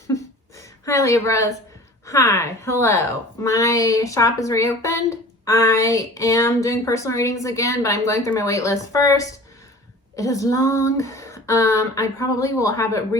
Hi Libras. Hi, hello. My shop is reopened. I am doing personal readings again, but I'm going through my wait list first. It is long. I probably will have it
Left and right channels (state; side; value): normal; both; correlation 0.42